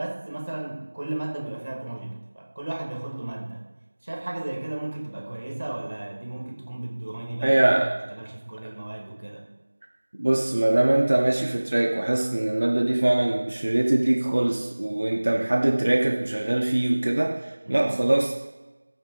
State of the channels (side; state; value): both; inverted; correlation -1.00